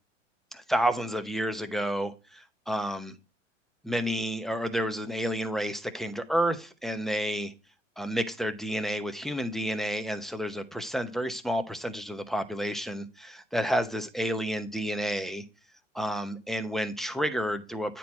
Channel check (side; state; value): both; normal; correlation 0.82